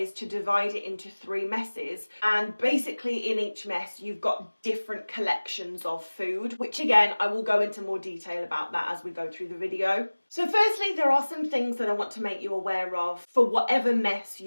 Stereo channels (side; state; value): both; inverted; correlation -1.00